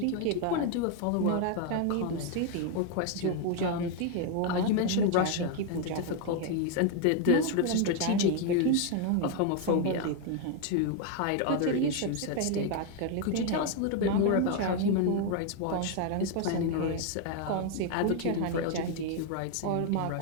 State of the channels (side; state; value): both; different; correlation 0.01